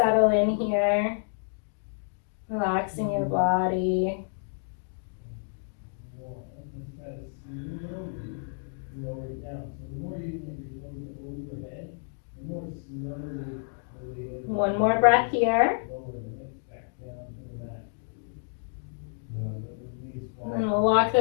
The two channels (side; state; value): right; silent; digital silence